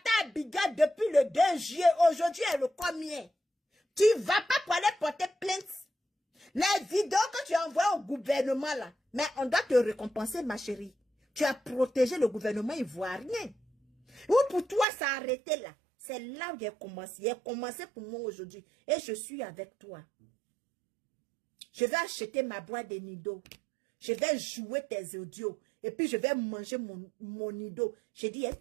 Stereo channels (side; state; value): left; drops out; at 14.9 s